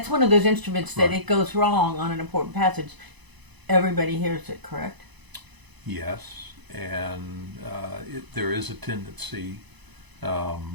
one of those instruments that it goes wrong on an important passage, everybody hears it, correct? Yes, and there is a tendency to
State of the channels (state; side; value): late; left; 1.0 ms